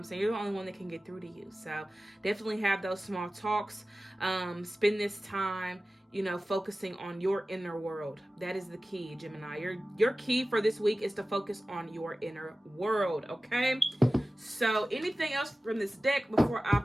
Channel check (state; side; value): normal; both; correlation 0.96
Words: saying? You're the only one that can get through to you. So definitely have those small talks. Spend this time, focusing on your inner world. That is the key, Gemini. Your key for this week is to focus on your inner world, okay? So anything else from this deck before I